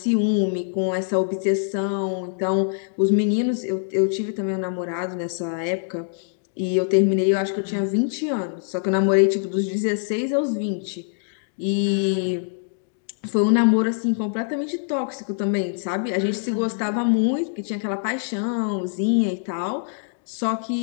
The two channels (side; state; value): right; silent; digital silence